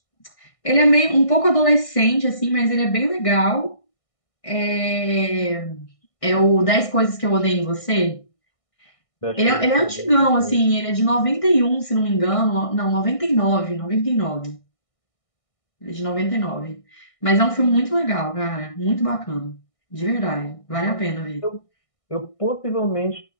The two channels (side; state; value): right; late; 1.6 ms